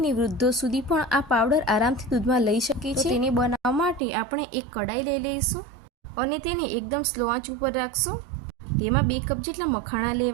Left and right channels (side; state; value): left; drops out; at 4.0 s